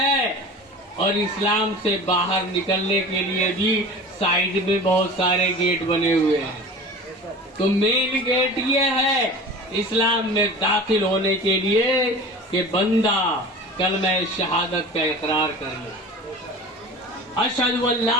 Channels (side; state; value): both; normal; correlation 0.37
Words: اور اسلام سے باہر نکلنے کے لیے بھی سائڈ میں بہت سارے گیٹ بنے ہوئے ہیں۔ تو مین گیٹ یہ ہے اسلام میں داخل ہونے کے لیے کہ بندہ کلمہ شہادت کا اقرار کر لے، اشہد ان